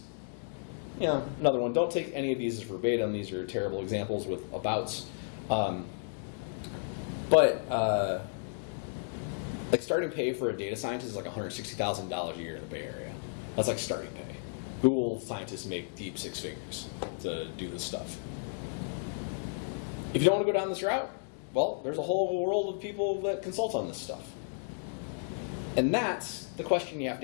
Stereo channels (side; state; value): right; silent; digital silence